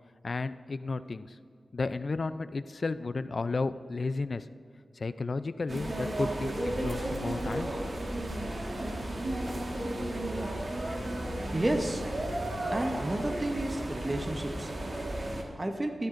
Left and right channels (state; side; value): normal; both; correlation 0.94